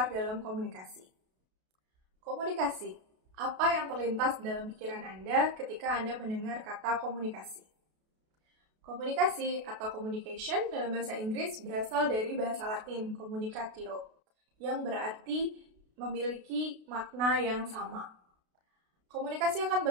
dalam komunikasi. Komunikasi, apa yang terlintas dalam pikiran Anda ketika Anda mendengar kata komunikasi? Komunikasi atau communication dalam bahasa Inggris berasal dari bahasa Latin communicatio, yang berarti memiliki makna yang sama. Komunikasi akan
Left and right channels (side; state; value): left; late; 32 ms